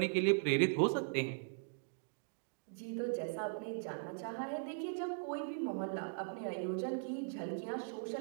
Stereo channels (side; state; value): left; silent; digital silence